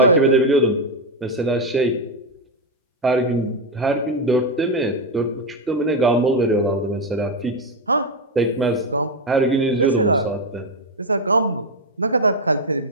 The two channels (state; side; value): normal; both; correlation 0.06